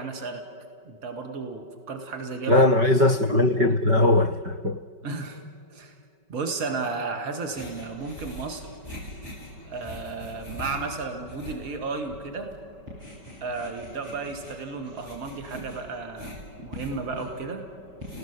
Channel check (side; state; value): left; late; 5.3 ms